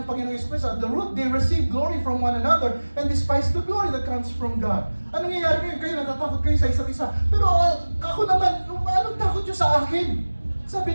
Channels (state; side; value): inverted; both; correlation -1.00